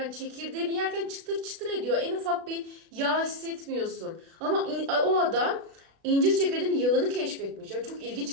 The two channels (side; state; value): left; late; 36 ms